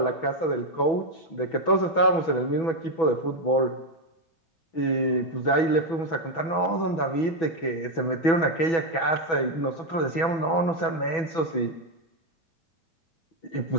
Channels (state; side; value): late; right; 6.1 ms